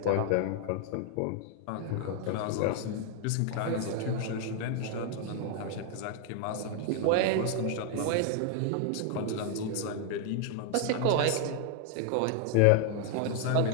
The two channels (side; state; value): both; different; correlation 0.00